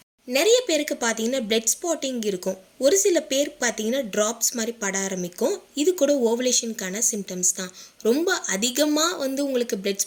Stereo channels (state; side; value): identical; both; correlation 1.00